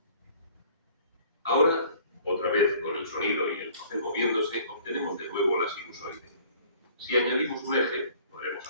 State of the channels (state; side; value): inverted; both; correlation -0.53